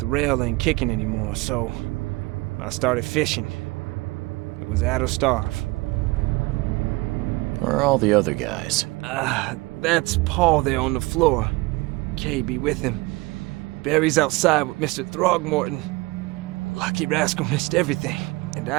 rail ain't kicking anymore, so I started fishing. It was at or starve. Where are all the other guys? That's Paul there on the floor. Kay be with him. Barry's outside with Mr. Throgmorton. Lucky rascal missed everything. And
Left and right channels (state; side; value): quieter; left; 23.0 dB